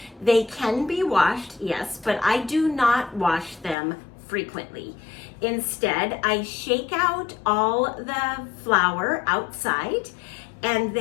They can be washed, yes, but I do not wash them frequently. Instead, I shake out all the flour outside, and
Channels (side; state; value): right; drops out; at 3.8 s